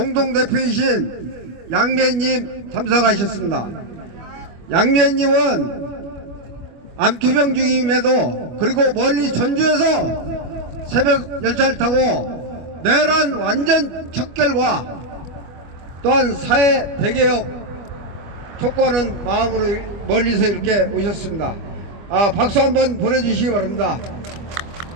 양미애님 참석하셨습니다. 양미애님은 암투병 중임에도 그리고 멀리 전주에서 새벽 열차를 타고 내란 완전 척결과 또한 사회 대개혁 촉구하는 마음으로 멀리서 이렇게 오셨습니다. 박수 한번 보내주시기 바랍니다.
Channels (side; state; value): left; late; 25 ms